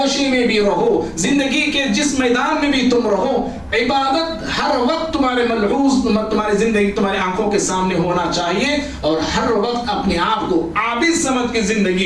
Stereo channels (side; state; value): both; identical; correlation 1.00